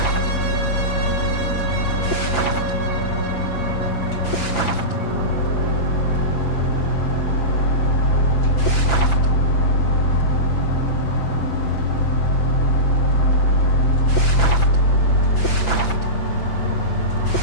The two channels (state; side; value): late; right; 5.9 ms